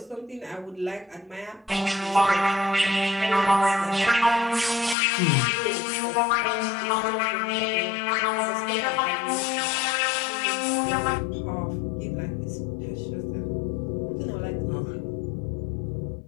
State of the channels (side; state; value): right; drops out; at 5.0 s